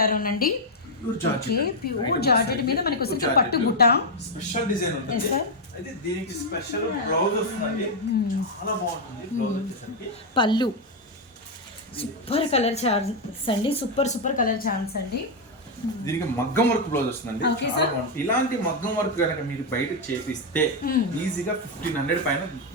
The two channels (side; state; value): both; normal; correlation 0.01